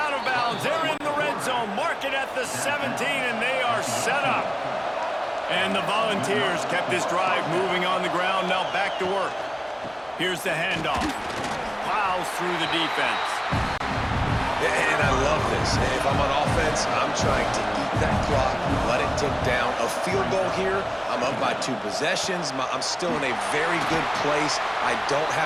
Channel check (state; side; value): identical; both; correlation 1.00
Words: of bounds. They're in the red zone. Mark it at the 17, and they are set up. And the Volunteers kept this drive moving on the ground. Now back to work. Here's the handoff. Plows through the defense. And I love this. If I'm on offense, I'm trying to eat that clock, let it tick down. A field goal here, I'm up by 2 possessions. I'm still in a very good place. I don't